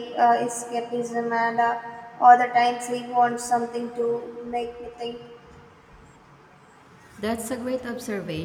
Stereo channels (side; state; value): both; identical; correlation 1.00